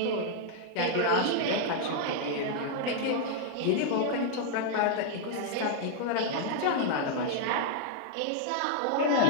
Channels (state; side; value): different; both; correlation 0.00